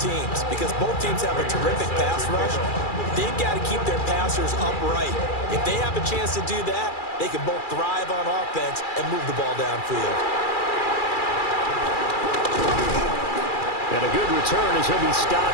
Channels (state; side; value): late; right; 2.3 ms